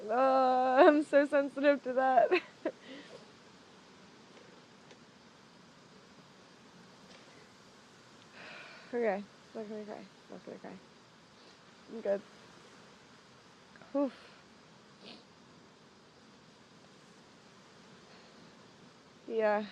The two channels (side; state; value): both; identical; correlation 1.00